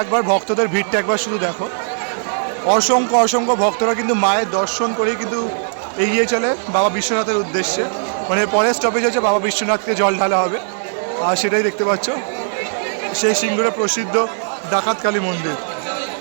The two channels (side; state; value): left; silent; 64 dB below the other